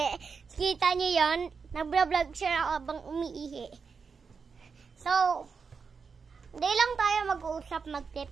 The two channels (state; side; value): quieter; left; 5.5 dB